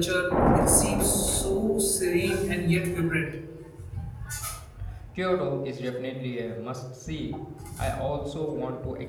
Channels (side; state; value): both; identical; correlation 1.00